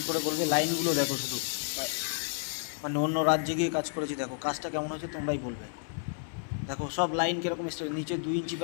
করে বলবে। লাইনগুলো দেখো শুধু, মানে অন্য রাজ্যে গিয়ে কাজ করেছি। দেখো কাজটা কেমন হয়েছে তোমরাই বলবে। দেখো সব লাইন কীরকম স্টেপ, নিচে 2 ইঞ্চি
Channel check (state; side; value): silent; right; 56 dB below the other